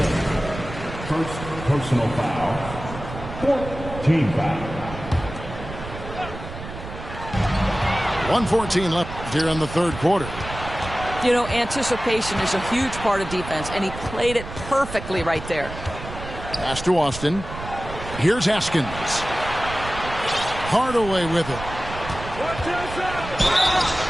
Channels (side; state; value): right; noise; rumble, 11 dB below the sound